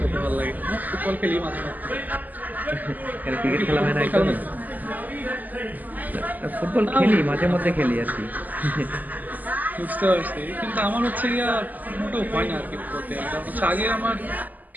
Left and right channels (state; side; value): late; left; 0.082 ms